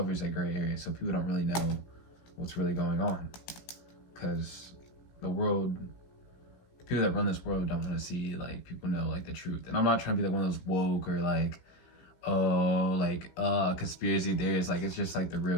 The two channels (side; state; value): right; late; 16 ms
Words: that gray area, so people don't really know what's really going on, because people that run this world don't want to see like people know like the truth. And I'm not trying to be like one of those woke or like conspiracy theories. Like, it's just like the